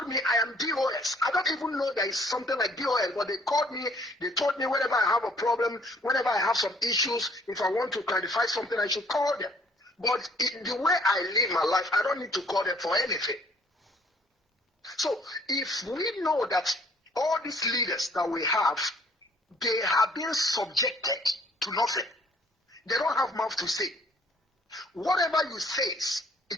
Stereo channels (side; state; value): both; normal; correlation 0.60